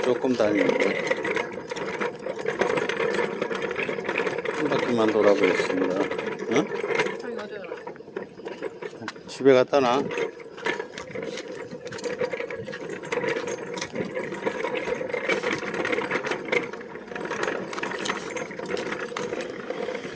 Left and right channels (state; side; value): identical; both; correlation 1.00